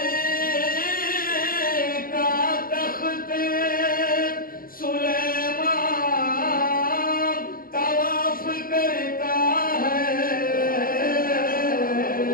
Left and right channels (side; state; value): right; late; 0.42 ms